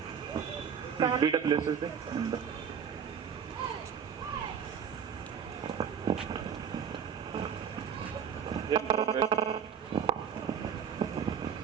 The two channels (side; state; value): left; quieter; 7.4 dB